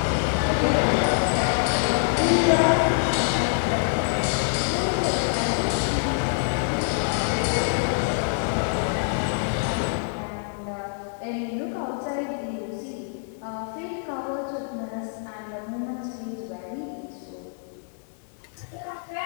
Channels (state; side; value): silent; right; 61 dB below the other